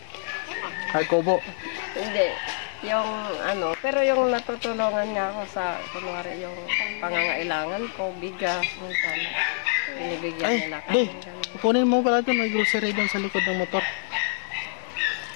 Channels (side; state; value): right; silent; 61 dB below the other